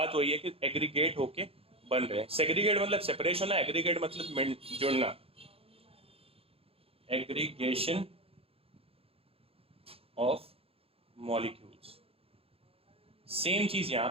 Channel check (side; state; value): left; late; 0.28 ms